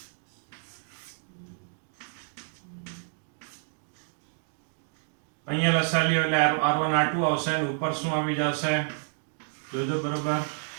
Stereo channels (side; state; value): left; silent; digital silence